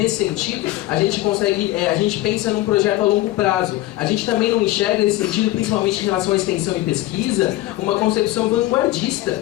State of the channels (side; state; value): right; quieter; 16.6 dB